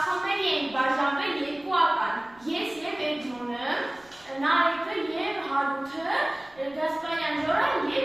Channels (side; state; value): right; noise; rumble, 29 dB below the sound